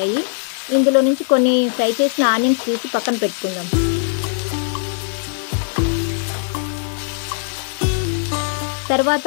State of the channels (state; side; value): silent; right; 66 dB below the other